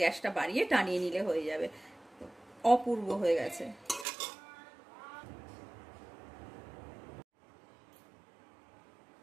গ্যাসটা বাড়িয়ে টানিয়ে নিলে হয়ে যাবে। অপূর্ব হয়ে গেছে।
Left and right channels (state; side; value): drops out; left; at 4.0 s